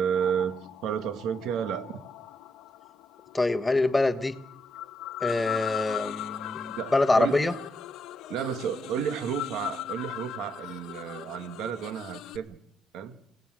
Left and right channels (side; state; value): both; normal; correlation 0.77